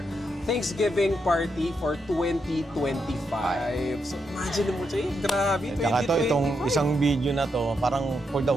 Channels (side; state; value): both; normal; correlation 0.82